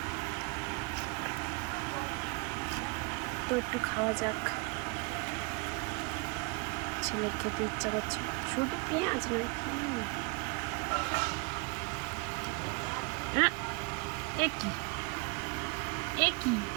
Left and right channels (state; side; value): quieter; left; 29.4 dB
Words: তো একটু খাওয়া যাক। ছেলের খেতে ইচ্ছা করছে, শুধু পেঁয়াজ নয়। একই